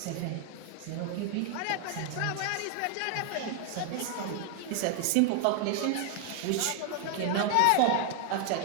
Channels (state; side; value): different; both; correlation 0.00